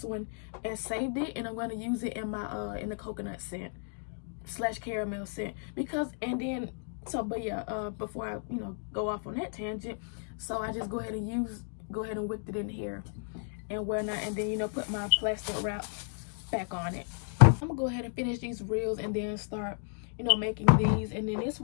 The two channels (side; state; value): right; silent; 56 dB below the other